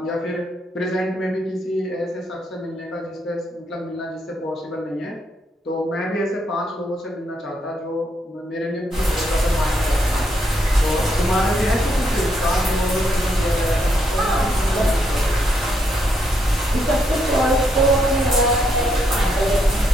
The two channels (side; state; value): both; normal; correlation 0.77